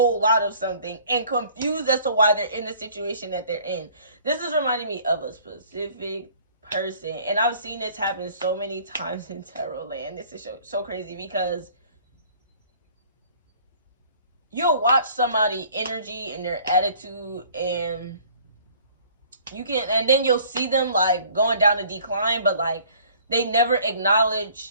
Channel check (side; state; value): both; inverted; correlation -0.54